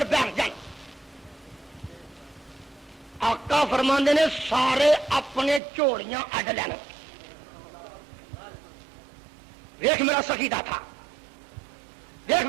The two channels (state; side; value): drops out; left; at 5.6 s